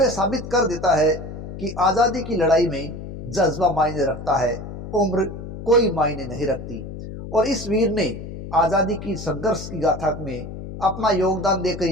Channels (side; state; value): left; noise; hum, 10 dB below the sound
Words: ये साबित कर देता है कि आज़ादी की लड़ाई में जज्बा मायने रखता है, उम्र कोई मायने नहीं रखती। और इस वीर ने आज़ादी की संघर्ष की गाथा में अपना योगदान देकर